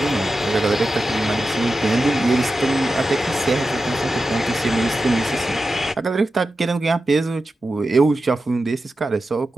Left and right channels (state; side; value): normal; both; correlation 0.92